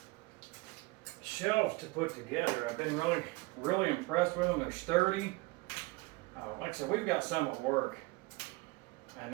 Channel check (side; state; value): left; quieter; 23.6 dB